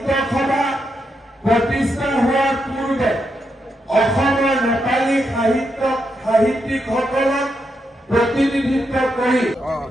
সভা প্ৰতিষ্ঠা হোৱাৰ পূৰ্বে অসমৰ নেপালী সাহিত্যিকসকলক प्रतिनिधित्व करी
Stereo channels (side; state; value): both; normal; correlation 0.83